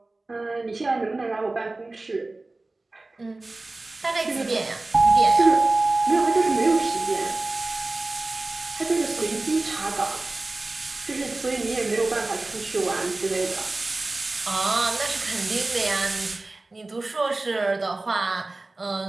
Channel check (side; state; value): left; quieter; 3.1 dB